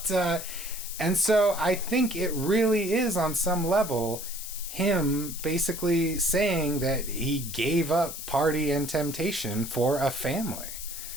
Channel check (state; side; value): noise; left; hiss, 9 dB below the sound